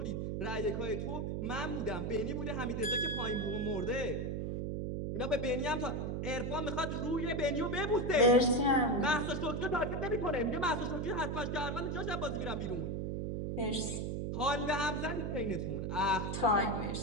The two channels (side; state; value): right; noise; hum, 2 dB below the sound